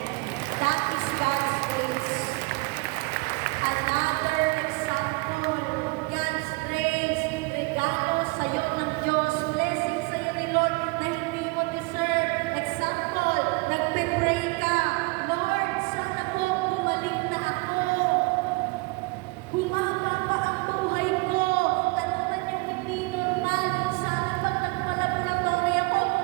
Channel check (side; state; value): left; quieter; 27.1 dB